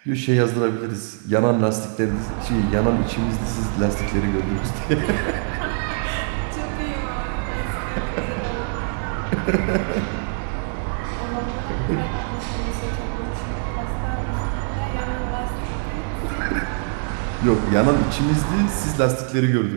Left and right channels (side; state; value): left; silent; 63 dB below the other